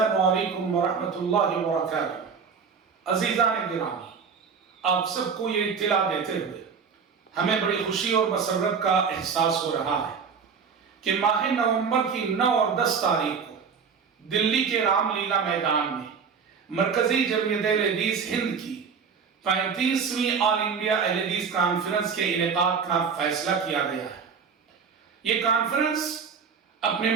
علیکم ورحمۃ اللہ وبرکاتہ۔ عزیزان گرامی، آپ سب کو یہ اطلاع دیتے ہوئے ہمیں بڑی خوشی اور مسرت کا احساس ہو رہا ہے کہ ماہ نومبر کی 9 اور 10 تاریخ کو دلی کے رام لیلا میدان میں مرکزی جمعیت اہل حدیث ہند کی 35ویں آل انڈیا اہل حدیث کانفرنس کے انعقاد کا فیصلہ کیا گیا ہے۔ یہ کانفرنس اپنے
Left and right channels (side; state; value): left; quieter; 6.1 dB